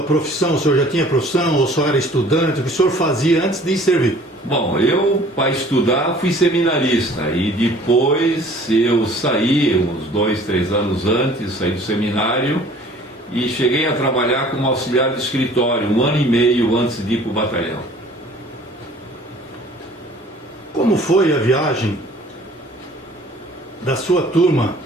profissão? O senhor já tinha profissão ou só era estudante? O que o senhor fazia antes de servir? Bom, eu, para estudar, fui seminarista e depois eu saí, uns 2, 3 anos antes, saí do seminário e cheguei a trabalhar como auxiliar de escritório, 1 ano e meio antes de ir para o batalhão. Como foi a viagem da sua turma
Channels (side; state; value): both; normal; correlation 0.52